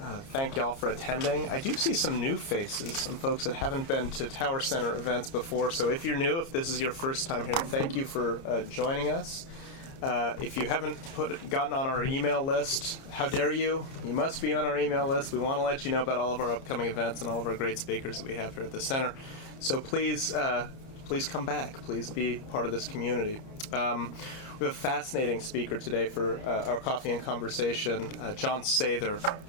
Thank y'all for attending. I do see some new faces, some folks that haven't been to Tower Center events before. So if you're new, if this is your first time here, thank you for joining us. If you haven't gotten on our email list, how dare you? You must be on our email list. We want to let you know about all of our upcoming events and all of our great speakers that we have here at the center. So please come back. Please be part of this community. We have a fascinating speaker today for our coffee and conversation, Jon Sather,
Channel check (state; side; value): late; right; 30 ms